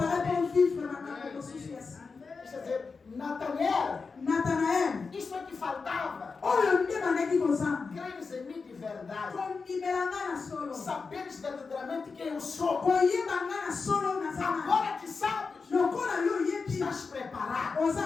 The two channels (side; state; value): right; quieter; 4.7 dB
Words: pour vivre makambo mosusu ya sika. Quer dizer, Nataniel, Nathanaël isso é que faltava. oyo nde bandaki kozanga Creres em mim de verdade. kondimela nga na solo Saberes verdadeiramente quem eu sou. koyeba nga na solo naza na Agora que sabes, lokola yo oyebi estás preparado